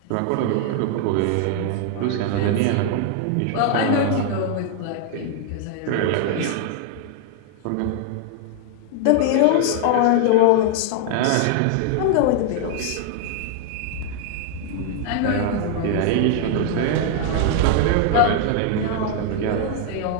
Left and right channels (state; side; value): different; both; correlation 0.00